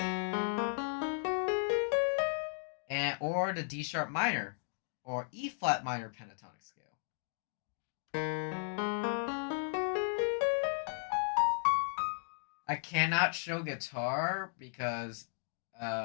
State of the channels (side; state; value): right; silent; 54 dB below the other